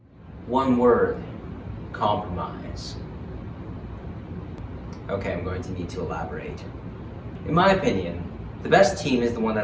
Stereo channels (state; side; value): identical; both; correlation 1.00